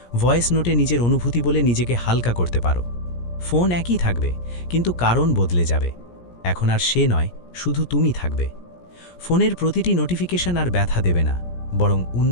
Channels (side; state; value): right; late; 17 ms